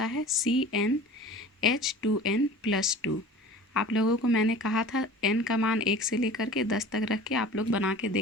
है CnH2n+2। आप लोगों को मैंने कहा था n का मान 1 से लेकर के 10 तक रख के आप लोग बना के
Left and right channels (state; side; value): normal; both; correlation 0.41